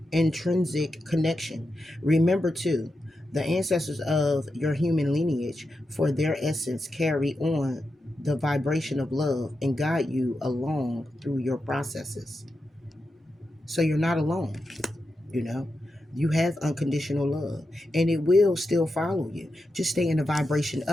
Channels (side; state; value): both; normal; correlation 0.88